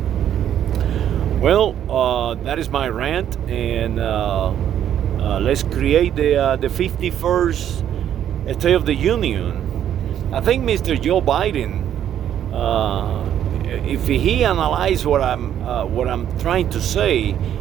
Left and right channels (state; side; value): quieter; left; 10.2 dB